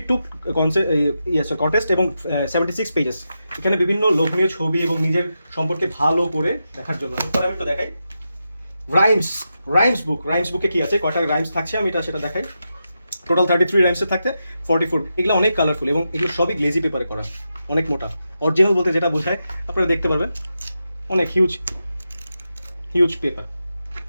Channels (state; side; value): inverted; both; correlation -0.88